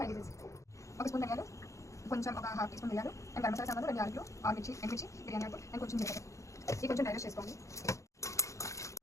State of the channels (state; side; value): late; right; 0.15 ms